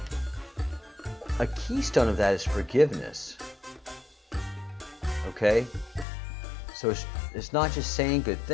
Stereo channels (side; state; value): right; drops out; at 6.1 s